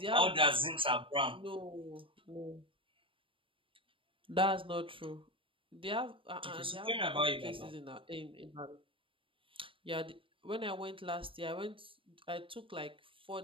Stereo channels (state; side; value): late; left; 0.25 ms